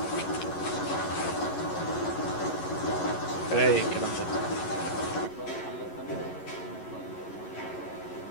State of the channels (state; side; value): late; right; 11 ms